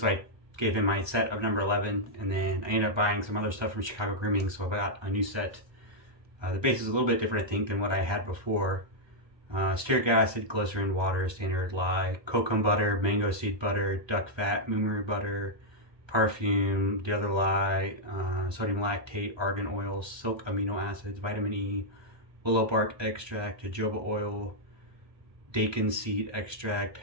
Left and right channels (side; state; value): left; late; 1.3 ms